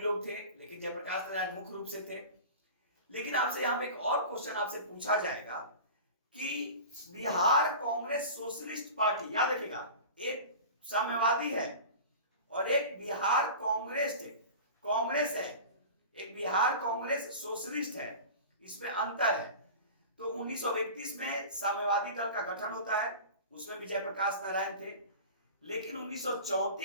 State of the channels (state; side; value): inverted; both; correlation -0.35